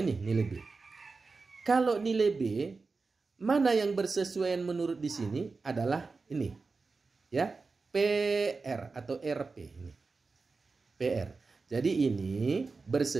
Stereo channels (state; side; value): quieter; left; 4.2 dB